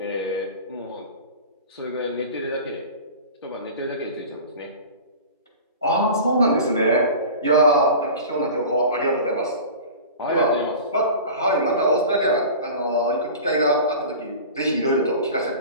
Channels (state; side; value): inverted; both; correlation -0.36